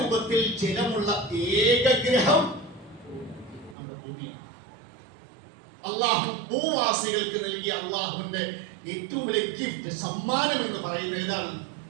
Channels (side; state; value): left; drops out; at 3.8 s